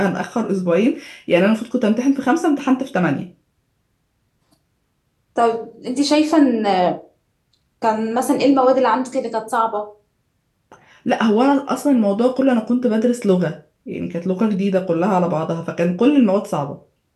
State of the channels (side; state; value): both; identical; correlation 1.00